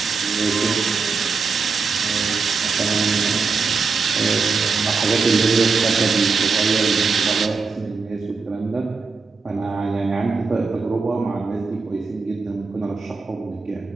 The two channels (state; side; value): quieter; left; 4.7 dB